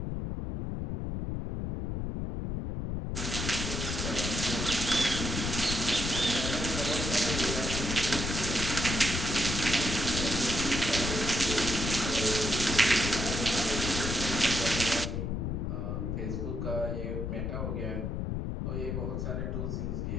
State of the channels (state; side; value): noise; left; rumble, 2 dB below the sound